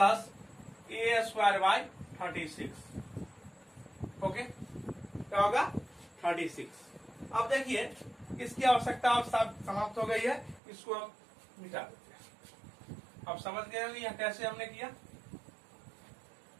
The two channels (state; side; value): drops out; left; at 10.6 s